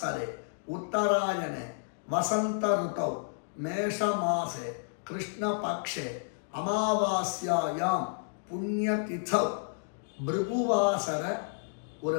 उत्तरायणे वसंत ऋतौ मेष मासे कृष्ण पक्षे अमावास्यायां पुण्यतिथौ भृगुवासर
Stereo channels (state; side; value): silent; right; digital silence